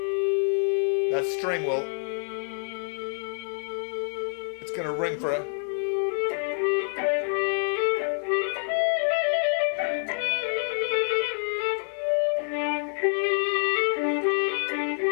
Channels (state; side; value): silent; right; digital silence